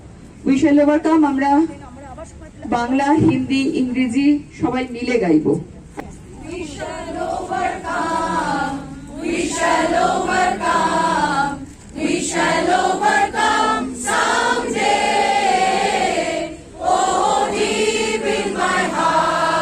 We shall overcome আমরা বাংলা, হিন্দি, ইংরেজি সবাই মিলে গাইবো। We shall overcome. We shall overcome. We shall overcome someday. Oh, deep in my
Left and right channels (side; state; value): both; identical; correlation 1.00